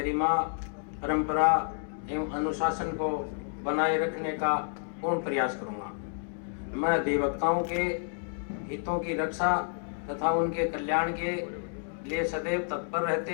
परंपरा एवं अनुशासन को बनाए रखने का पूर्ण प्रयास करूंगा। मैं अधिवक्ताओं के हितों की रक्षा तथा उनके कल्याण के लिए सदैव तत्पर रहते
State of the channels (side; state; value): right; silent; 58 dB below the other